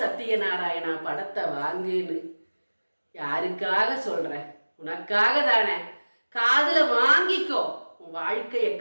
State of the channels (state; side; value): inverted; both; correlation -1.00